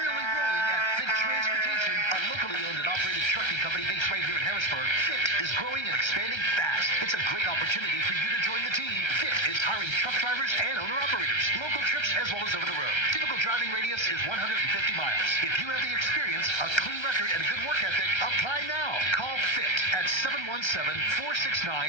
rolling at Fit Transportation, a locally owned and operated trucking company based right here in Harrisburg. Fit is growing and expanding fast. It's a great opportunity for you to join the team. Fit is hiring truck drivers and owner-operators, local trips as well as over the road. Typical driving radius is 150 miles. If you have the experience, a clean record, and a good work ethic, apply now. Call Fit at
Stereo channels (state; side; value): late; right; 1.3 ms